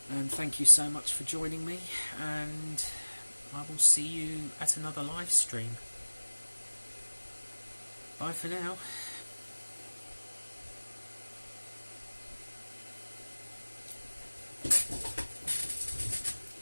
And thank you so much for joining me, and I will see you at another live stream. Bye for now.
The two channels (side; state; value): both; inverted; correlation -1.00